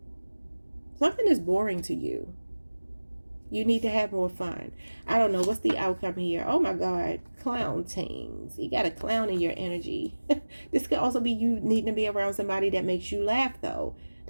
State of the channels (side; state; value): both; inverted; correlation -1.00